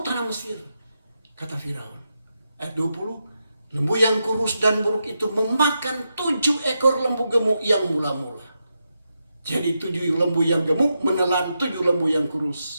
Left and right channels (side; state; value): both; inverted; correlation -0.86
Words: tanah Mesir, kata Firaun. Ayat 20, lembu yang kurus dan buruk itu memakan 7 ekor lembu gemuk yang mula-mula. Jadi 7 lembu yang gemuk menelan 7 lembu yang